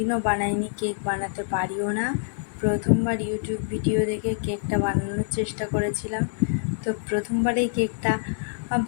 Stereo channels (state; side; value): silent; right; digital silence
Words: বানাইনি, কেক বানাতে পারিও না। প্রথমবার ইউটিউব ভিডিও দেখে কেকটা বানানোর চেষ্টা করেছিলাম। তো প্রথমবারেই কেকটা